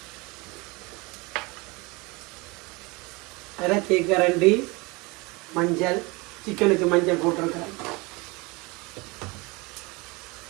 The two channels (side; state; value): left; quieter; 25.7 dB